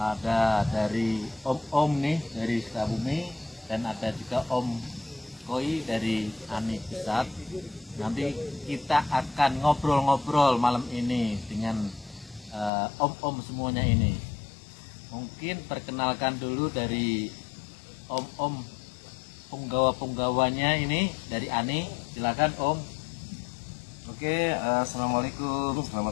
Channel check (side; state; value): right; drops out; at 12.7 s